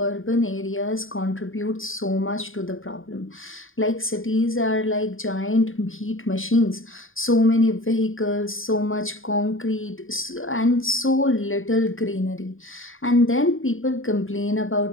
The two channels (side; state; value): right; late; 0.59 ms